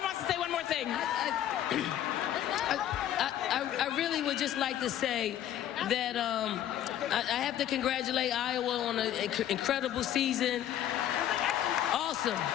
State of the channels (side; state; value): right; quieter; 11.5 dB